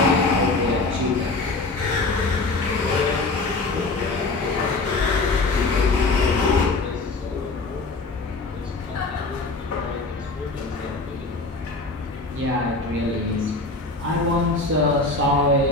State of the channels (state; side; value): quieter; right; 3.4 dB